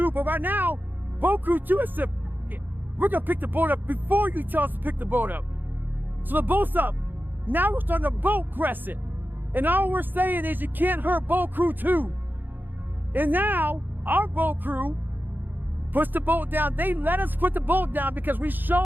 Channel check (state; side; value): late; left; 0.091 ms